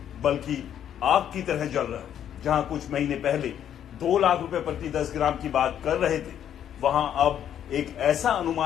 बल्कि आग की तरह जल रहा है। जहां कुछ महीने पहले 2 लाख रुपए प्रति 10 ग्राम की बात कर रहे थे, वहां अब एक ऐसा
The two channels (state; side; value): quieter; right; 9.9 dB